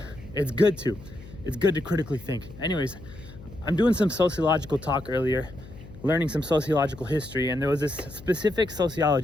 it's good to. It's good to critically think. Anyways, I'm doing some sociological talk earlier, learning some sociological history, and there was this specific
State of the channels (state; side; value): noise; left; hum, 17 dB below the sound